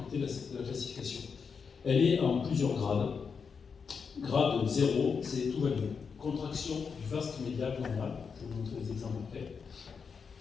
de la classification. Elle est en plusieurs grades. Grade 0, c'est tout va bien. Contraction du vaste médial normal, je vais vous montrer des exemples après.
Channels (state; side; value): quieter; right; 5.8 dB